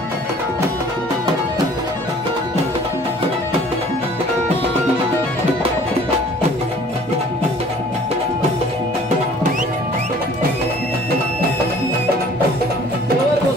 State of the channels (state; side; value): normal; both; correlation 0.52